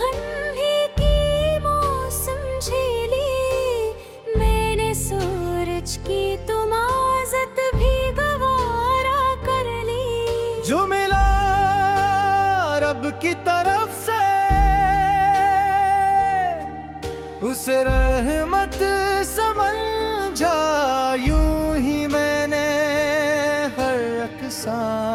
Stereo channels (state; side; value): identical; both; correlation 1.00